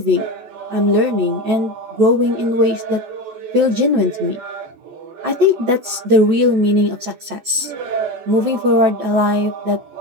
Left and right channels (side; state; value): left; late; 14 ms